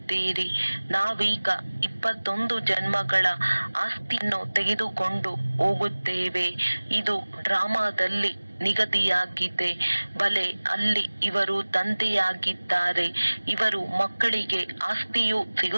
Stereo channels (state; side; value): inverted; both; correlation -1.00